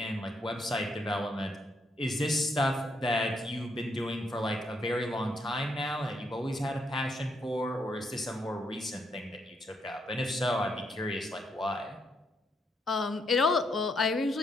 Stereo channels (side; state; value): both; normal; correlation 0.76